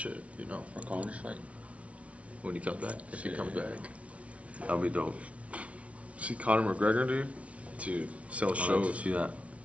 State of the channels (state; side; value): late; left; 0.064 ms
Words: you know. For Connor's fight. When he comes back, if he comes back. That'll be dope. See Conor McGregor, dude? Dude, sell I'd like to shows. see that.